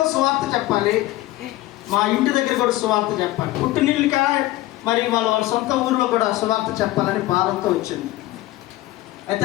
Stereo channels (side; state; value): right; quieter; 17.0 dB